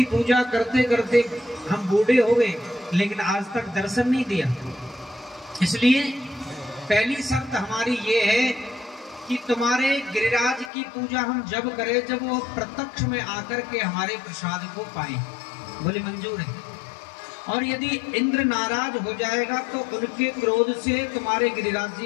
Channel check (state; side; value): drops out; right; at 10.7 s